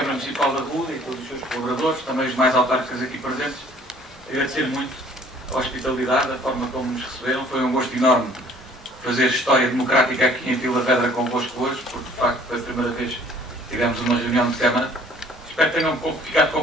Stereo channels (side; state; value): both; normal; correlation 0.55